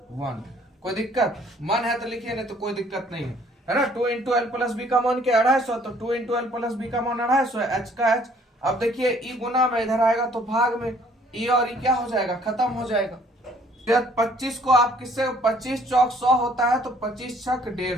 1। कोई दिक्कत मन है तो लिखिए, नहीं तो कोई दिक्कत नहीं है ना। 2 × L + B का मान क्या 250, तो 2 × L + B का मान 250 है, H का H। अब देखिए ई गुना में इधर आएगा तो भाग में, ई और ई क्या हो जाएगा खत्म हो जाएगा। 25 को आप किससे 25 चौक 100 होता है, तो 25 छक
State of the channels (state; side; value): normal; both; correlation 0.60